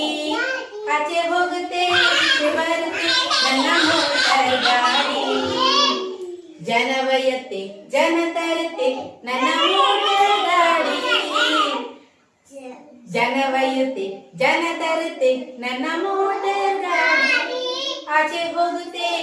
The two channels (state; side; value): identical; both; correlation 1.00